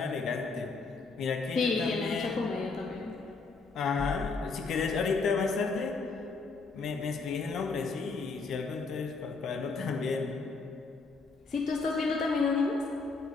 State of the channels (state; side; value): quieter; right; 4.2 dB